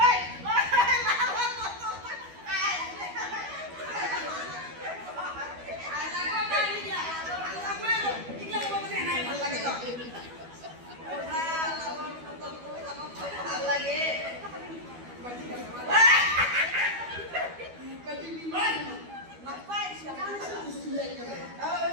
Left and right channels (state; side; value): late; left; 12 ms